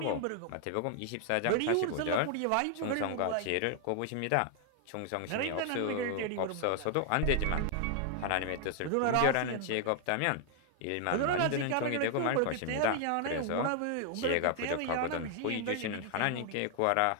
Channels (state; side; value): different; both; correlation 0.00